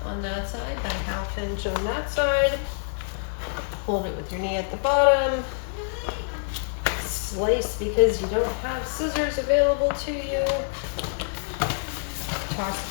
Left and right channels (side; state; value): right; silent; digital silence